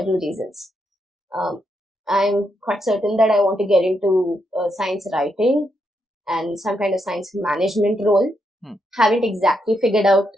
reasons. I'm quite certain that I want to get into science writing and some kind of science management role. Haven't exactly figured out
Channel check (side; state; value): both; normal; correlation 0.80